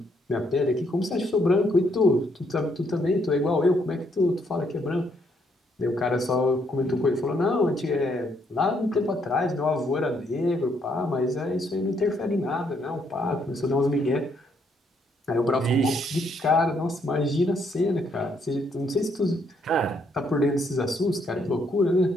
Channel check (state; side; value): normal; both; correlation 0.72